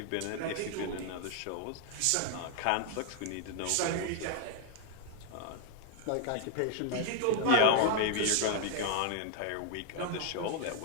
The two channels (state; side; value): different; both; correlation 0.00